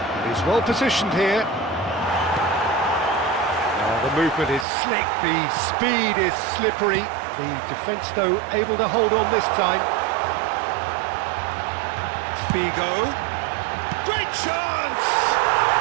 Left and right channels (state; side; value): drops out; left; at 4.7 s